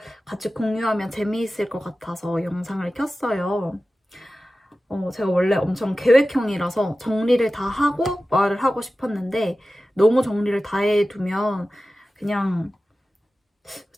같이 공유하면 재미있을 것 같아서 영상을 켰어요. 제가 원래 엄청 계획형이라서 정리를 다 하고 말을 하고 싶었는데 너무 정리를 다 해두면 그냥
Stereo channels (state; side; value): normal; both; correlation 0.95